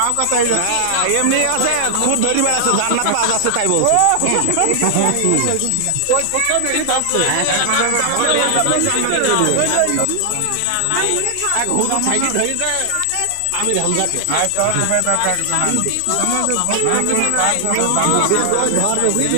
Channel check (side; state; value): both; different; correlation 0.00